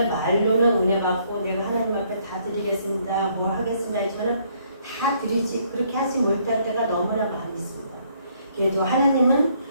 말로는 은혜 받고 내가 하나님 앞에 다 드리겠습니다. 뭘 하겠습니다 했지만은 다 드리지 그렇게 하지 못할 때가 너무나 많이 있습니다. 그래도 하나님은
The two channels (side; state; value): both; inverted; correlation -0.67